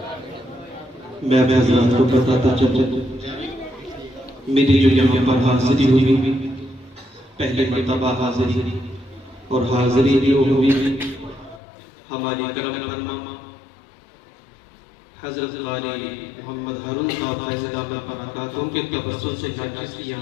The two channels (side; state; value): right; drops out; at 11.6 s